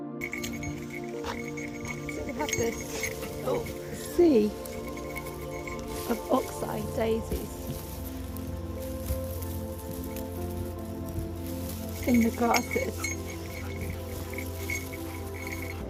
So we have this sea of oxeye daisies in the grasses.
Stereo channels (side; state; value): both; identical; correlation 1.00